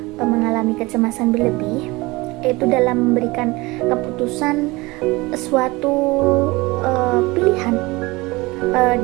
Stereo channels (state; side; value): quieter; left; 22.6 dB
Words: mengalami kecemasan berlebih itu dalam memberikan keputusan suatu pilihan,